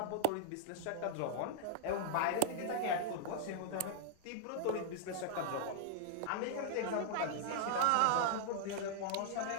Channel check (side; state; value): both; different; correlation -0.01